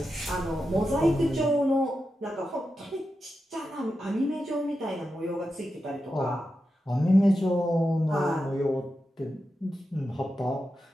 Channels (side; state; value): both; normal; correlation 0.89